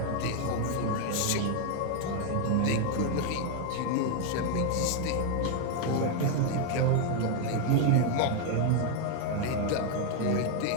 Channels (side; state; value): both; different; correlation 0.01